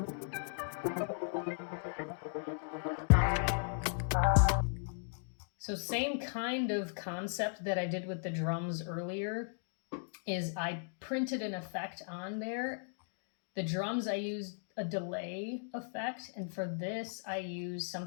So same kind of concept that I did with the drums earlier is I printed an effect on there. The drums I used a delay effect, and for this I use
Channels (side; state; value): right; silent; digital silence